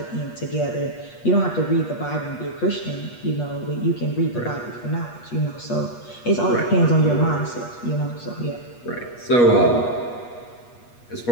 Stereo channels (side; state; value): right; late; 8.3 ms